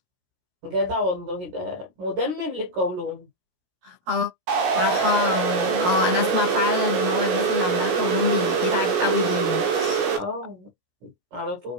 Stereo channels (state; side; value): late; left; 17 ms